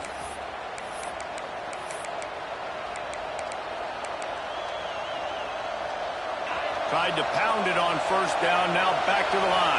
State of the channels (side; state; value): both; identical; correlation 1.00